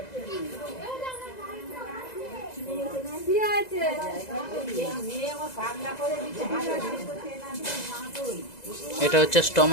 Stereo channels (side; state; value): right; late; 2.0 ms